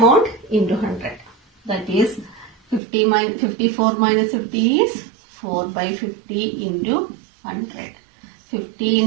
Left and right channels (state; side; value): drops out; left; at 2.8 s